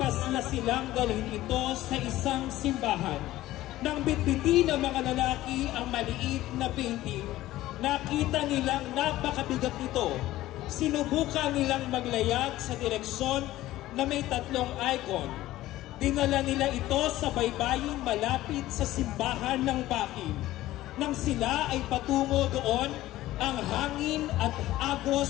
silang dalhin ito sa isang simbahan. Nang bitbitin ng mga lalaki ang maliit na painting, nakita nilang napakabigat nito. Sinubukan nilang maglayag sa direksyon na may tatlong icon. Dinala nila ito sa baybayin malapit sa simbahan ng Bakin. Nang sila ay patungo doon, ang hangin at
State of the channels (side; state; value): right; quieter; 15.7 dB